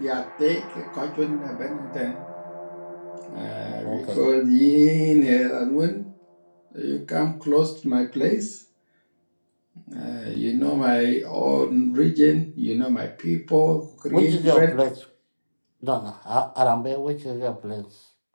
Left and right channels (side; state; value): both; inverted; correlation -1.00